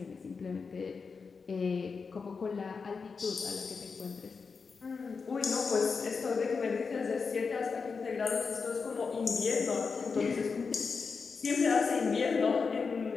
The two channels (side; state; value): right; quieter; 5.1 dB